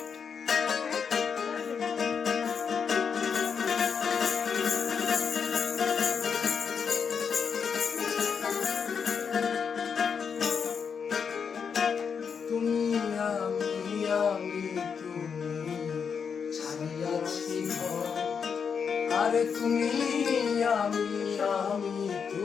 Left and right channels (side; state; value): right; quieter; 6.5 dB